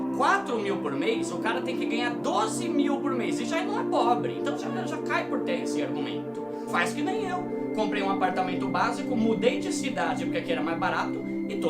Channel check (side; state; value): both; identical; correlation 1.00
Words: 4 mil por mês, o cara tem que ganhar 12 mil por mês. E já não é pobre, então já cai por terra esse argumento. Faz que nem eu. Comprei um apartamento básico, mudei de cidade porque aqui era mais barato e